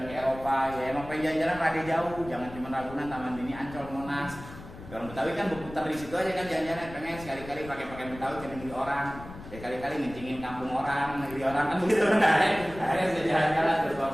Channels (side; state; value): left; noise; rumble, 15 dB below the sound